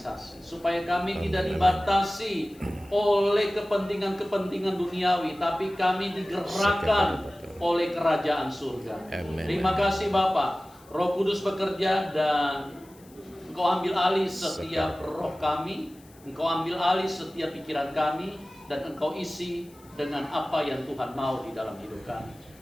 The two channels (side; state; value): left; noise; hiss, 27 dB below the sound